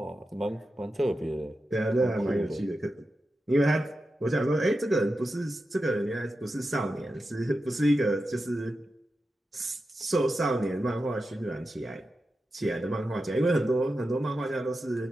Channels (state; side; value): normal; both; correlation 0.90